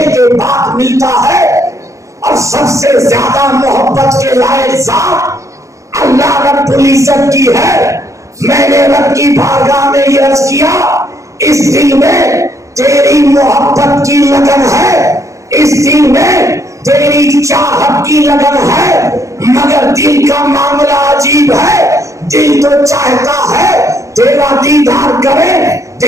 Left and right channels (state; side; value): late; left; 0.15 ms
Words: کے بعد ملتا ہے. اور سب سے زیادہ محبت کے لائق ذات اللہ رب العزت کی ہے. میں نے رب کی بارگاہ میں یہ عرض کیا, اس دل میں تیری محبت کی لگن ہے، اس دل میں تیری چاہت کی لگن ہے، مگر دل کا معاملہ عجیب ہے۔ دل تو چاہتا ہے تیرا دیدار کرے،